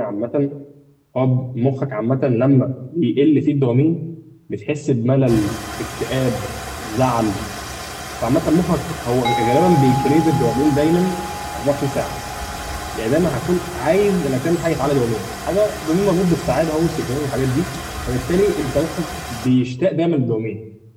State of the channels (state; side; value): identical; both; correlation 1.00